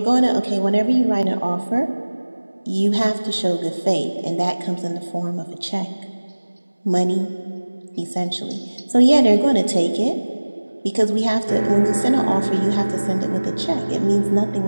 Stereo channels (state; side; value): inverted; both; correlation -1.00